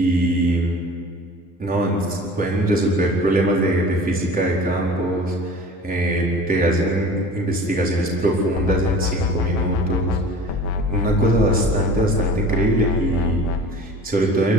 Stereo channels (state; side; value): normal; both; correlation 0.41